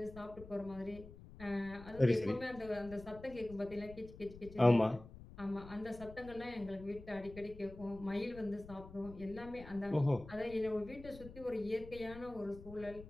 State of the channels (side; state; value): left; noise; rumble, 16 dB below the sound